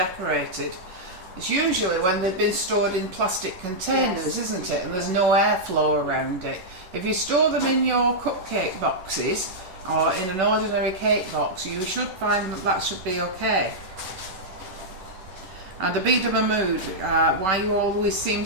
It's usually when they've been stored in plastic containers, Yes. isn't it? And there's no airflow around it. If you store them in your cupcake boxes or in an ordinary cake box, you should find that that should be okay. And Abida Mahmood, why you always seem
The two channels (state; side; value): late; left; 11 ms